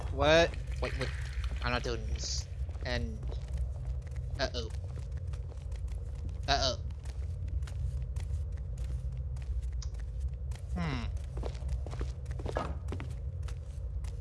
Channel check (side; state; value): both; identical; correlation 1.00